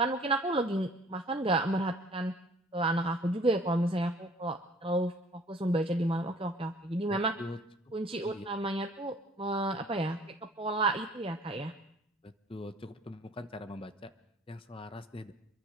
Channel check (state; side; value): normal; both; correlation 0.54